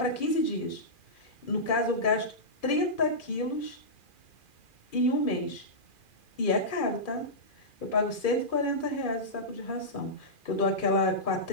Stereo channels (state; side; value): late; right; 2.4 ms